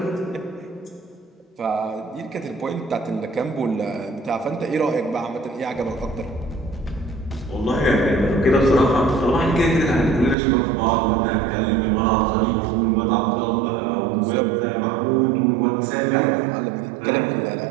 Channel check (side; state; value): left; drops out; at 10.4 s